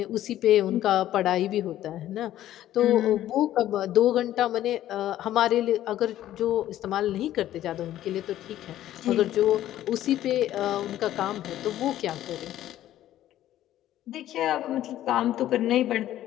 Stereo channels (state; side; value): quieter; right; 13.0 dB